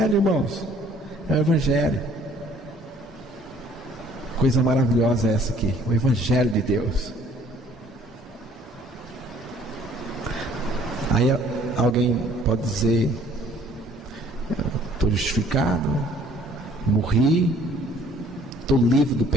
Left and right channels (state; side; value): normal; both; correlation 0.57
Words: irmãos. É o Evangelho. Coisa maravilhosa é essa aqui, o Evangelho de Deus. Aí alguém pode dizer: estou justificado, morri, estou livre do